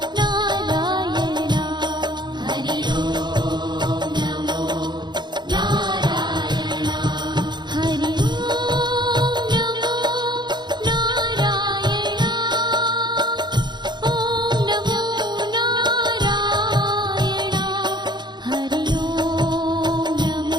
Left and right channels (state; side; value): late; left; 0.21 ms